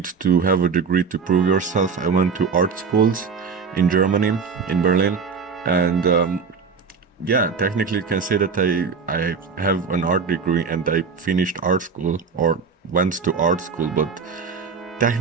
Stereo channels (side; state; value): left; quieter; 5.4 dB